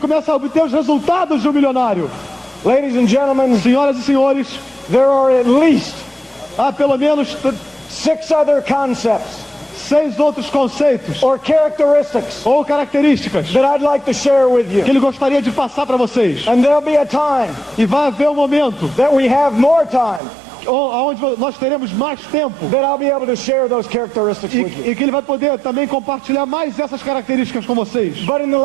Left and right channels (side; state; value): left; drops out; at 20.2 s